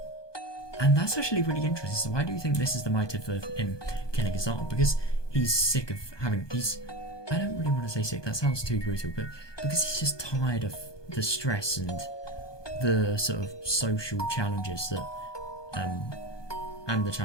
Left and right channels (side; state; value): right; late; 1.2 ms